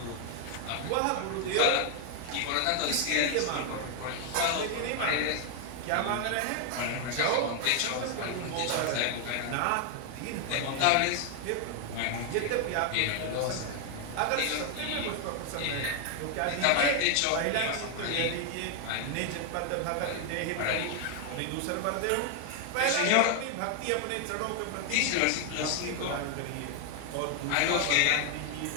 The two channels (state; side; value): different; both; correlation 0.00